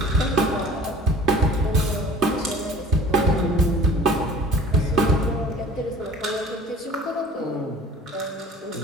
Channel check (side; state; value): both; normal; correlation 0.48